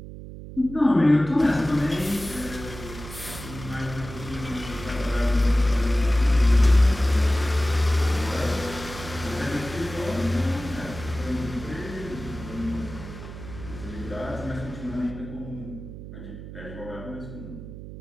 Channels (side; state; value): right; noise; hum, 12 dB below the sound